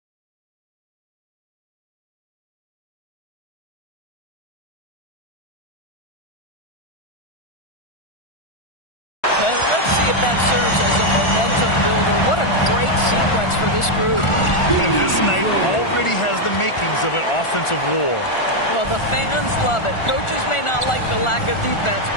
Let's see if that serves as a momentum builder. What a great sequence for this group. And this night already has the makings of an offensive war. Well, the fans love it. Coaches may not like the lack of defense,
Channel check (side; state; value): right; late; 1.4 ms